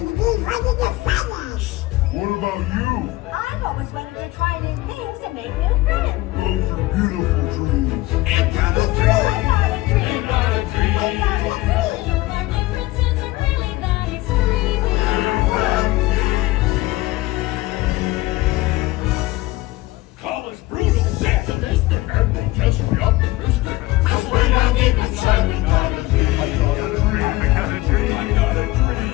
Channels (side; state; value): right; quieter; 19.1 dB